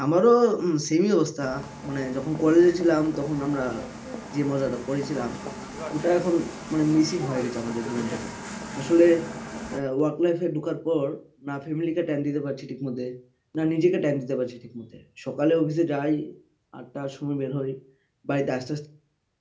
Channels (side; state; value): both; identical; correlation 1.00